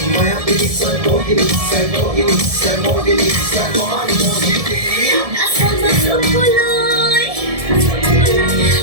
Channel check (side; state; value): left; late; 1.7 ms